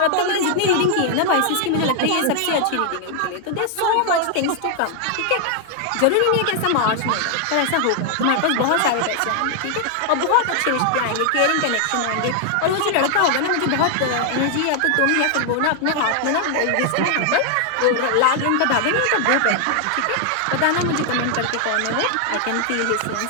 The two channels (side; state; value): both; different; correlation 0.00